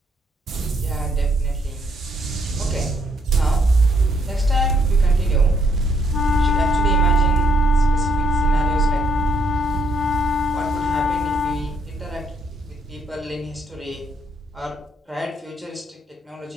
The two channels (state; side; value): normal; both; correlation 0.71